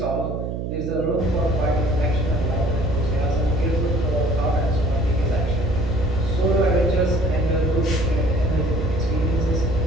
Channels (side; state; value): right; noise; hum, 3 dB below the sound